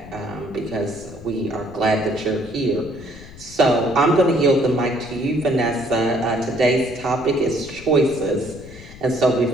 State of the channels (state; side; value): noise; left; rumble, 17 dB below the sound